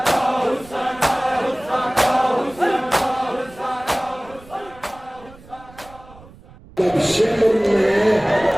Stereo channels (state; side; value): noise; right; rumble, 22 dB below the sound